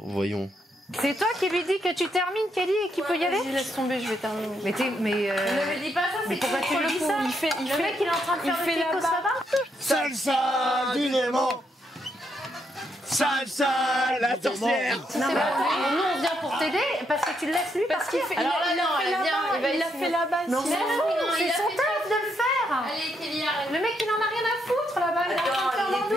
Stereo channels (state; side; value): normal; both; correlation 0.78